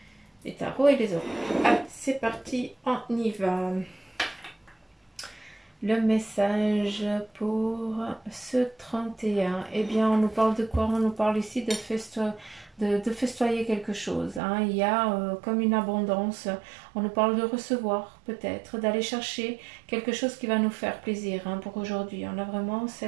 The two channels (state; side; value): drops out; left; at 14.4 s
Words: les tarots et les oracles. Allez, c'est parti, on y va. Le message pour ce 31, eh bien, on nous parle de quoi? On nous parle ici de festoyer quelque chose. Hein. Il y a comme une abondance. On nous parle de recevoir, peut-être, d'aller chercher quelque chose qui va nous faire plaisir hein, pour aujourd'hui. On a vraiment